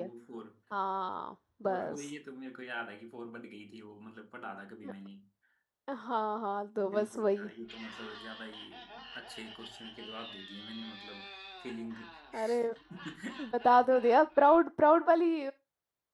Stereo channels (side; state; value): both; identical; correlation 1.00